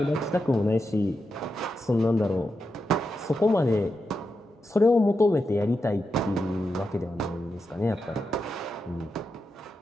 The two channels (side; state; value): both; normal; correlation 0.87